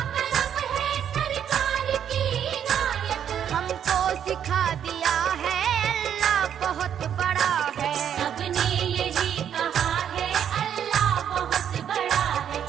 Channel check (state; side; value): quieter; left; 9.1 dB